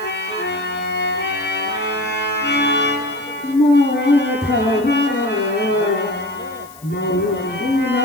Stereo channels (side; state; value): left; noise; hiss, 22 dB below the sound